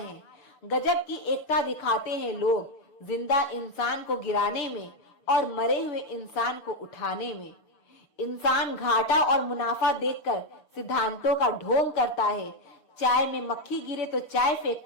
गजब की एकता दिखाते हैं लोग, जिंदा इंसान को गिराने में और मरे हुए इंसान को उठाने में। इंसान घाटा और मुनाफा देखकर सिद्धांतों का ढोंग करता है। चाय में मक्खी गिरे तो चाय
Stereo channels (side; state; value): right; late; 6.7 ms